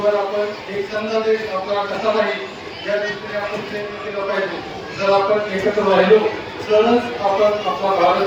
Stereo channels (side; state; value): both; identical; correlation 1.00